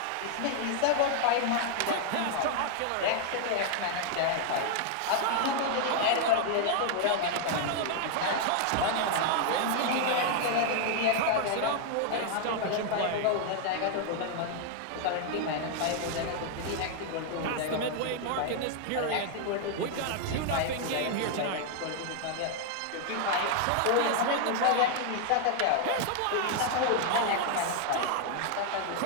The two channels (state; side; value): different; both; correlation 0.00